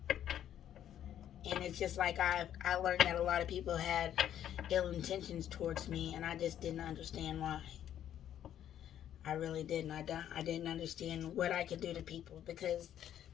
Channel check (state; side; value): quieter; right; 10.7 dB